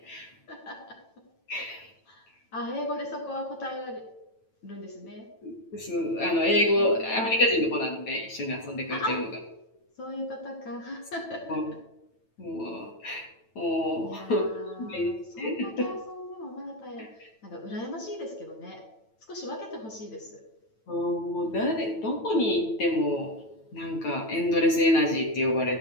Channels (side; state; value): right; late; 9.1 ms